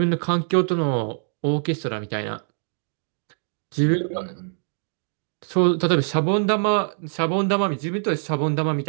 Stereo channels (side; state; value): left; silent; 63 dB below the other